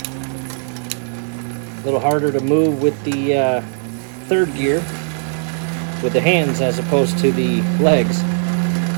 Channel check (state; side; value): silent; left; 67 dB below the other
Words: A little harder to move with the third gear with the hands as opposed to the legs.